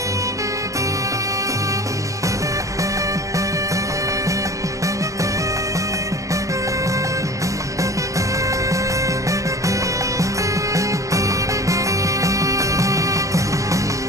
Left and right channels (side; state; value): left; late; 0.16 ms